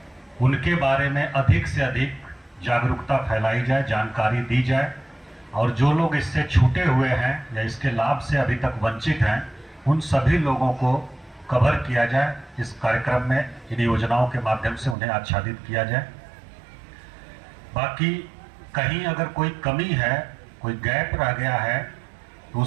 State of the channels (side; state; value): left; drops out; at 15.0 s